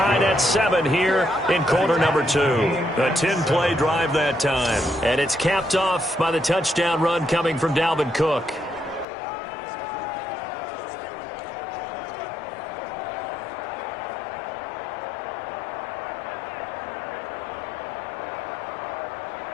at 7 here in quarter number 2. A 10-play drive that time. And it's capped off by the touchdown run coming from Dalvin Cook.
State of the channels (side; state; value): right; drops out; at 9.1 s